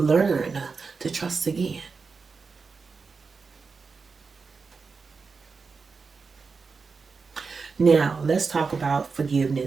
to trust again. Now, let's talk about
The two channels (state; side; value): quieter; left; 4.8 dB